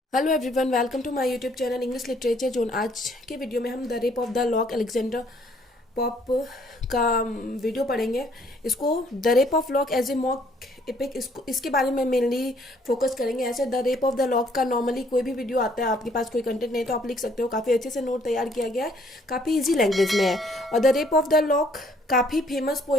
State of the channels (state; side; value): normal; both; correlation 0.64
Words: Hello everyone, welcome to my YouTube channel English literature zone. आज के video में हम the rape of the lock Alexander Pope का video पढ़ेंगे। इसको the rape of lock as a mock epic, इसके बारे में मेनली फोकस करेंगे। ऐसे the rape of the lock का नॉर्मली कोई भी वीडियो आता है, आपके पास कोई कंटेंट नहीं तो आप लिख सकते हो। काफ़ी अच्छे से नोट तैयार किया गया है, काफ़ी ईजी लैंग्वेज में है। और the rape of the lock काफ़ी फेमस